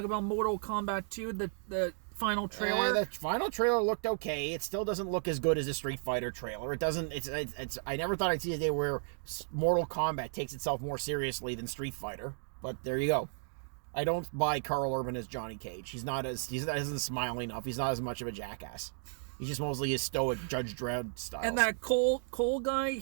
about Mortal Kombat 2, the final trailer? The final trailer looked okay. It still doesn't look as good as a Street Fighter trailer. It doesn't... It's. I never thought I'd see a day where Mortal Kombat takes itself more seriously than Street Fighter. But there you go. I don't buy Carl Urban as Johnny Cage. He doesn't smile enough. He's not as much of a jackass. He's just mostly his stoic Judge Dredd style. And that Cole guy,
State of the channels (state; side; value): silent; left; digital silence